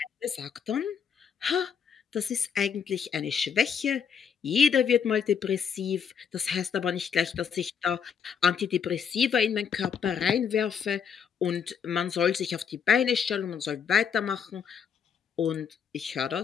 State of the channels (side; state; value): right; quieter; 7.1 dB